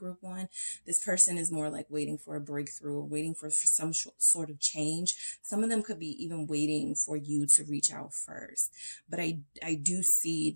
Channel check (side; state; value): both; inverted; correlation -1.00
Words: one. This person is more like waiting for a breakthrough, or waiting for some sort of change. Some of them could be even waiting for you to reach out first. But I do see